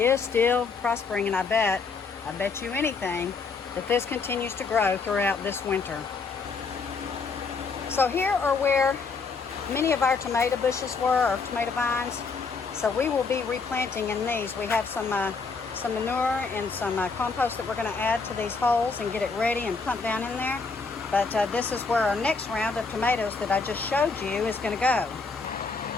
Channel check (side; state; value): right; quieter; 4.6 dB